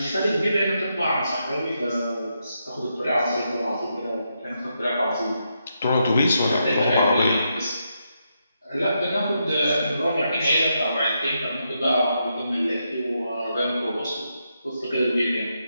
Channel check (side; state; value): both; inverted; correlation -0.82